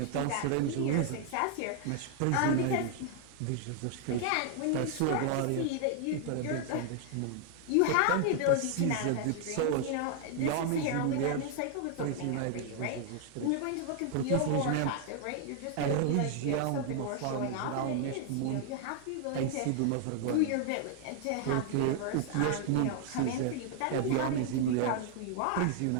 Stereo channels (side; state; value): both; different; correlation 0.00